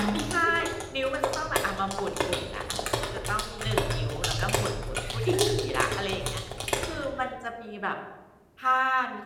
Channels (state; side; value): identical; both; correlation 1.00